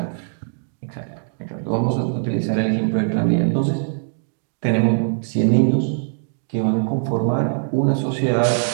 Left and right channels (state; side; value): silent; left; digital silence